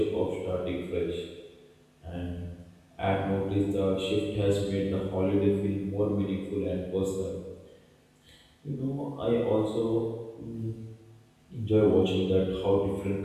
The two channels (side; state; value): both; identical; correlation 1.00